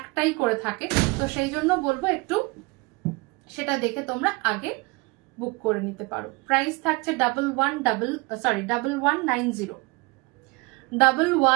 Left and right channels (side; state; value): left; quieter; 26.1 dB